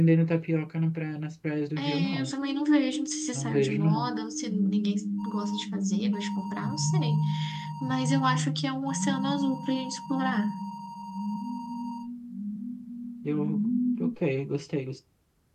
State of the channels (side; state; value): both; identical; correlation 1.00